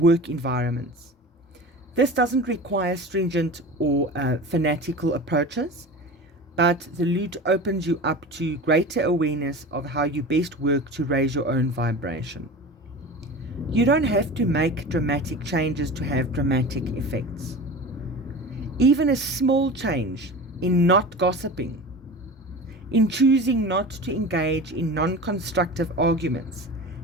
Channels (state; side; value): normal; both; correlation 0.33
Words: environments. This doesn't require stringent or fanatical approaches, but the lute opens you up to greater awareness of how you best work to raise your own vibration. You don't have to make dramatic changes to have dramatic effects. Even a small change in not gossiping, in choosing not to engage in non-constructive arguments,